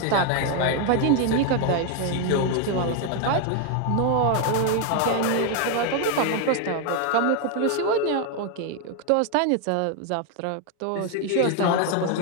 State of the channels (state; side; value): different; both; correlation 0.01